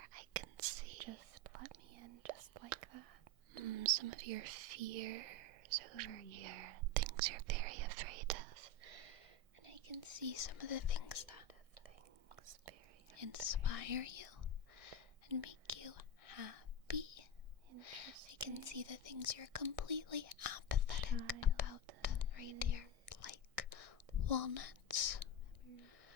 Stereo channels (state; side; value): late; left; 1.6 ms